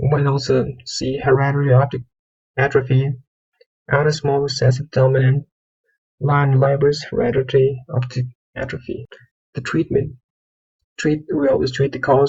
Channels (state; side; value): identical; both; correlation 1.00